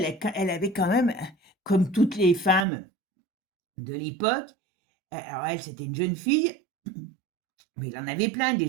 avait quand même, comme toutes les femmes de l'époque, alors elle, c'était une jeune fille, mais il en avait plein des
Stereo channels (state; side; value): drops out; left; at 2.7 s